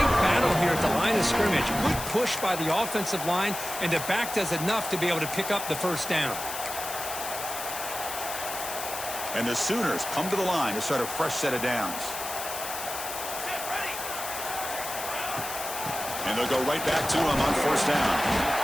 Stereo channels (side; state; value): left; noise; hiss, 7 dB below the sound